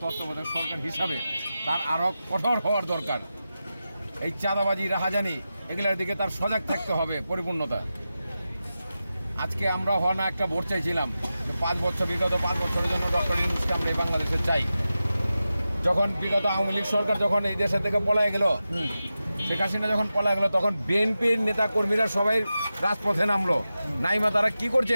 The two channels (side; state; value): both; inverted; correlation -0.93